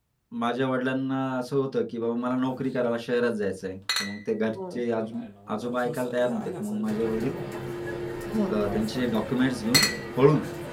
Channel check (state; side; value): identical; both; correlation 1.00